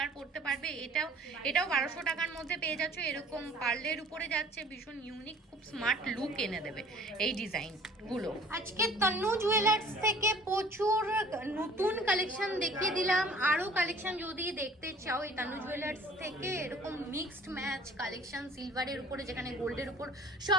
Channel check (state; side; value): normal; both; correlation 0.51